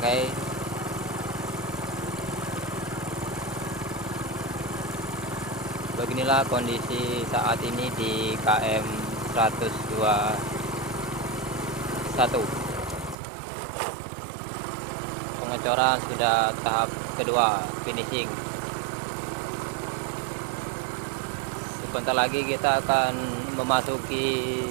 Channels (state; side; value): drops out; left; at 13.2 s